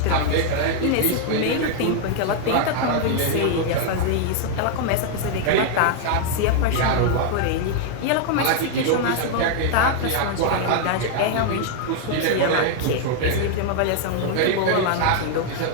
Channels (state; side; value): different; both; correlation 0.00